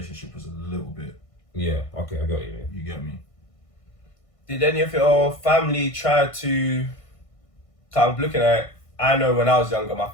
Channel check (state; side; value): late; right; 1.5 ms